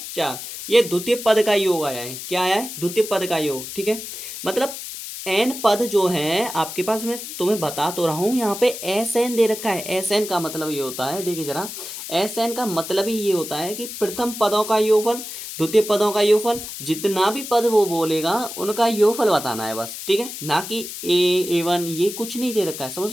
4। ये द्वितीय पद का योग आया है। क्या आया है, द्वितीय पद का योग। ठीक है, मतलब n पद जो है आपके पास, मैं तुम्हें बता तो रहा हूं, यहाँ पे Sn दे रखा है। Sn का मतलब ये होता है, देखिए जरा, Sn का मतलब ही ये होता है कि प्रथम पदों का योगफल, द्वितीय पदों का योगफल, जितना भी पद वो बोलेगा उनका योगफल बताना है बस। ठीक है, ना कि A1 ये कुछ नहीं दे रखा है। समझ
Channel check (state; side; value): noise; left; hiss, 9 dB below the sound